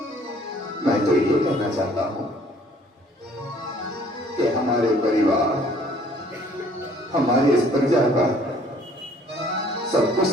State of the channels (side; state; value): both; normal; correlation 0.58